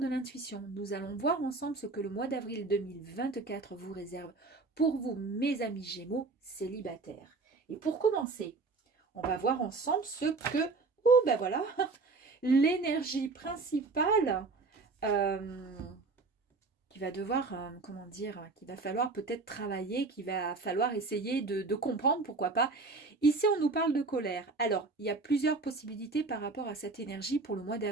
l'Intuition. Nous allons voir ensemble ce que le mois d'avril 2024 vous réserve pour vous, mes amis Gémeaux célibataires. Et pour commencer, on va voir ensemble ce que, ben voilà, l'énergie principale qui va devoir, comment dire, qu'il va falloir peut-être travailler, qu'il va falloir essayer de comprendre, pourquoi pas. Ici, on nous parle de colère. Alors, il y a plusieurs possibilités par rapport à cette énergie pour le mois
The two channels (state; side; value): quieter; left; 3.8 dB